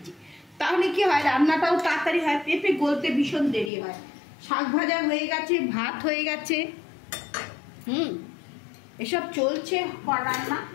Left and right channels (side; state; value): right; drops out; at 3.7 s